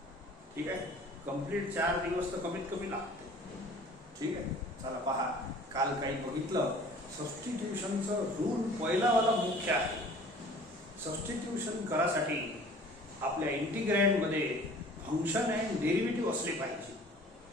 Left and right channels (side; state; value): both; normal; correlation 0.48